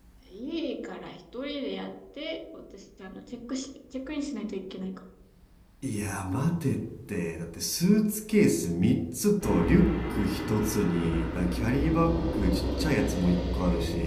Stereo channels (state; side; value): identical; both; correlation 1.00